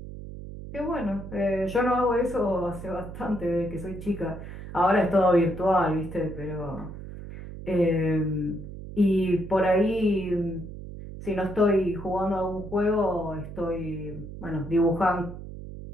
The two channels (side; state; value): right; noise; hum, 11 dB below the sound